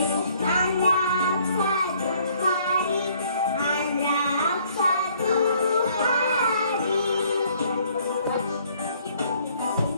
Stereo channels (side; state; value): both; inverted; correlation -0.62